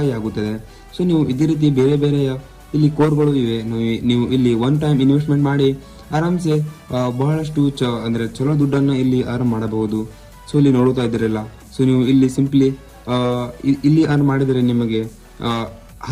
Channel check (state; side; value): identical; both; correlation 1.00